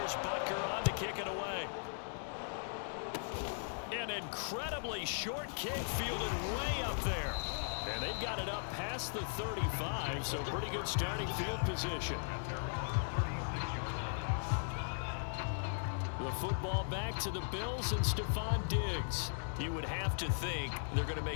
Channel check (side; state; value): right; silent; digital silence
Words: Butker on to kick it away. An incredibly short kick fielded way up there. And they've got it up past the 35, so pretty good starting field position. The football back to the Bills and Stephon Diggs. You would have to think they're going to